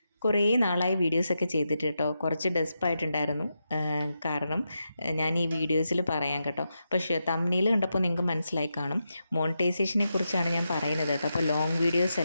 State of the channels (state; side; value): inverted; both; correlation -0.87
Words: കുറേ നാളായി വീഡിയോസൊക്കെ ചെയ്തിട്ട് കേട്ടോ. കുറച്ച് ഡെസ്പായിട്ടുണ്ടായിരുന്നു. കാരണം ഞാൻ ഈ വീഡിയോസിൽ പറയാം കേട്ടോ. പക്ഷേ തംബ്നെയിൽ കണ്ടപ്പോൾ നിങ്ങൾക്ക് മനസ്സിലായി കാണും. മോണിറ്റൈസേഷനെ കുറിച്ചാണ് ഞാൻ പറയുന്നത് കേട്ടോ. അപ്പോൾ ലോങ് വീഡിയോസ്